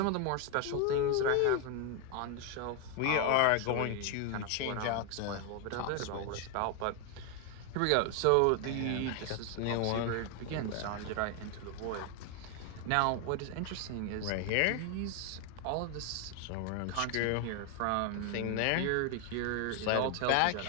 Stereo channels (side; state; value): both; different; correlation 0.01